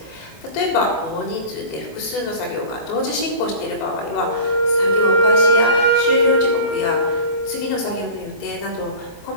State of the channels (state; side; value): late; right; 18 ms